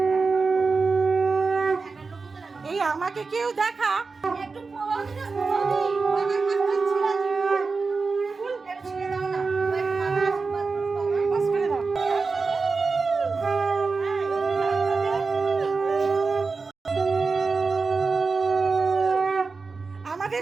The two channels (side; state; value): left; quieter; 4.4 dB